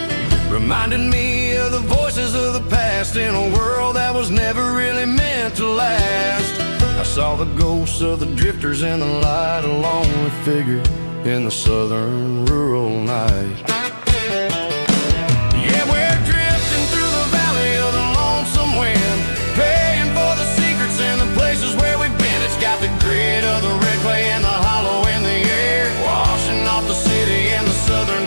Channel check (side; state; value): both; inverted; correlation -1.00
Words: reminding me of the voices of the past in a world that was never really meant to last. I saw the ghosts of the drifters in the light, a lonely figure in the southern rural night. Yeah, we're drifting through the valley of the lonesome wind, paying for the secrets and the places where we've been. It's got the grit of the red clay and the hollow in the air, washing off the city and the southern